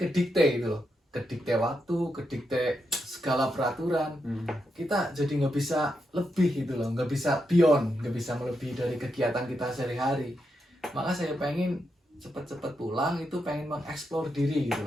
kedikte gitu loh. Kedikte waktu, kedikte segala peraturan. Kita jadi nggak bisa lebih gitu loh. Nggak bisa beyond, nggak bisa melebihi dari kegiatan kita sehari-hari. Maka saya pengen cepet-cepet pulang, itu pengen mengeksplor diri gitu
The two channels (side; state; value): both; normal; correlation 0.84